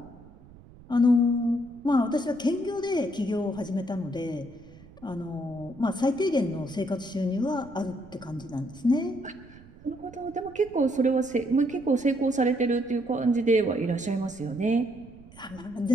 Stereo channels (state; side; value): noise; right; rumble, 22 dB below the sound